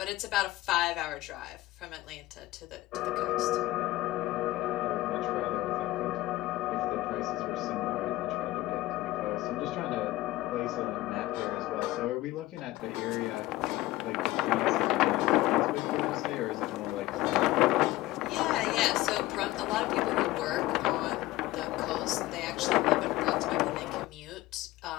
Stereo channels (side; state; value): right; quieter; 17.7 dB